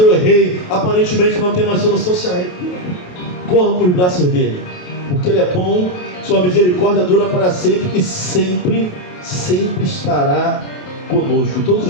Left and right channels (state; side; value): late; right; 28 ms